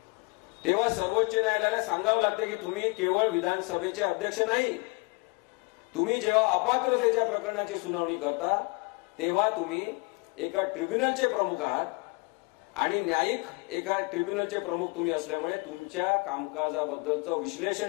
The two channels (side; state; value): right; quieter; 30.2 dB